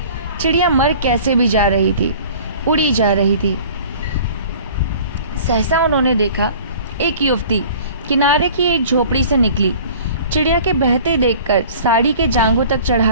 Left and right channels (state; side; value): inverted; both; correlation -0.46